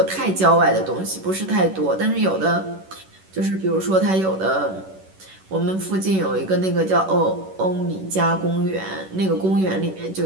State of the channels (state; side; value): late; left; 11 ms